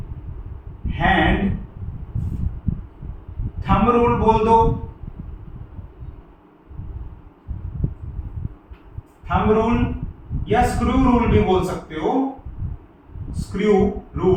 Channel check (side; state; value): both; identical; correlation 1.00